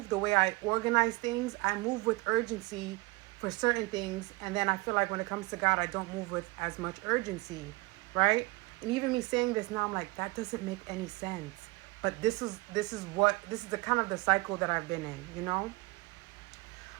the way I organize things, I move with urgency for certain things. And then I feel like when it comes to God, I don't move with as much urgency, right? And even me saying this now, I'm like, that doesn't make any sense. But this is the kind of the cycle that I've been in.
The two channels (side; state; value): left; quieter; 23.4 dB